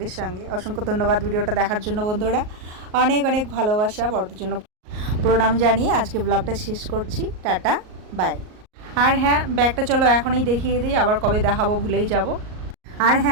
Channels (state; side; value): late; left; 38 ms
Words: সঙ্গে। অসংখ্য ধন্যবাদ ভিডিওটা দেখার জন্য বন্ধুরা, অনেক অনেক ভালোবাসা, বড়দের জন্য প্রণাম জানিয়ে আজকে ব্লগটা শেষ করছি। Tata, by. আর হ্যাঁ, ব্যাগটা চলো এখনই দেখিয়ে দিই, আবার কবে দেখাবো ভুলেই যাব। আর